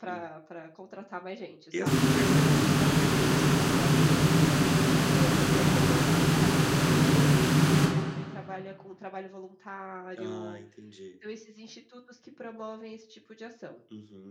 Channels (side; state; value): both; identical; correlation 1.00